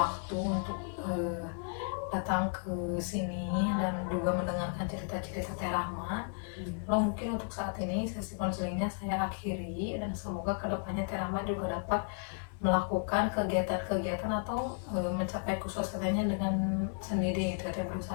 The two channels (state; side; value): silent; right; 55 dB below the other